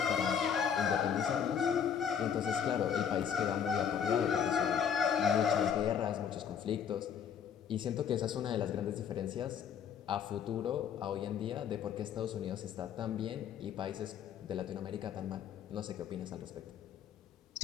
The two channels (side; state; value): right; quieter; 8.0 dB